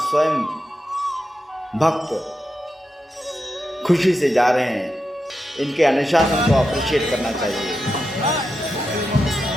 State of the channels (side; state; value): both; normal; correlation 0.88